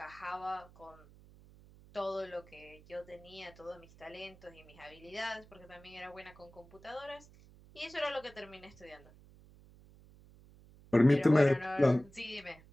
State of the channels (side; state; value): right; noise; hum, 23 dB below the sound